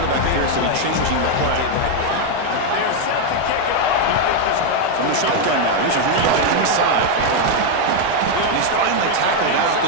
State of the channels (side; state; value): both; different; correlation 0.01